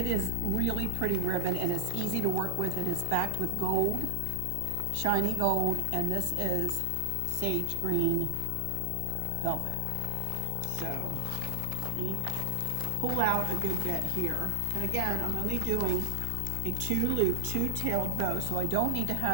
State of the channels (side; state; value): both; different; correlation 0.00